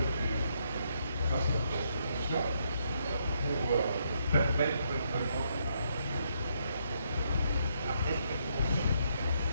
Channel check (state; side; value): inverted; both; correlation -0.75